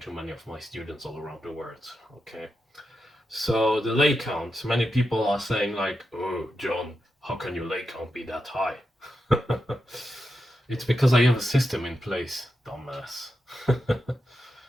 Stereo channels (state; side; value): normal; both; correlation 0.87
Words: to many of my students all around the world. Okay, so the leg count, many people are saying like, oh John, how can your leg count be that high? It's because I have a system in place, dumbass.